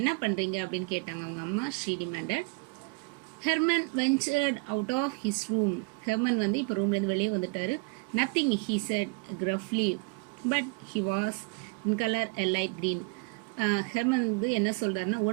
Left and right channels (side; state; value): left; quieter; 31.9 dB